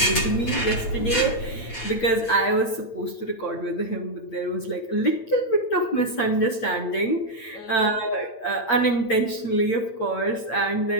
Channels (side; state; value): right; late; 8.4 ms